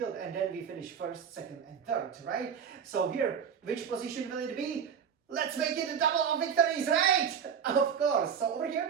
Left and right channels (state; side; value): quieter; left; 7.6 dB